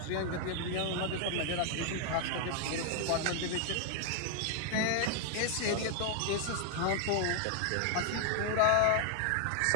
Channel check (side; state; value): both; different; correlation 0.00